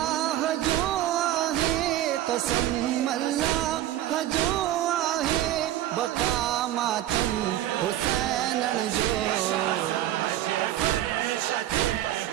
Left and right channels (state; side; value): quieter; left; 13.2 dB